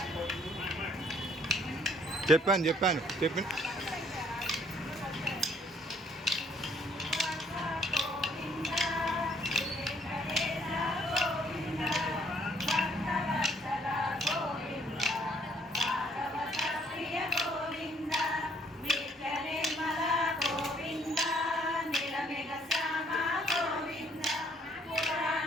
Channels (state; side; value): normal; both; correlation 0.64